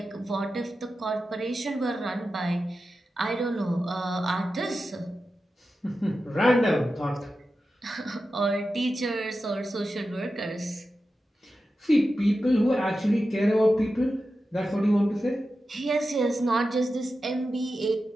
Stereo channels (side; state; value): both; normal; correlation 0.92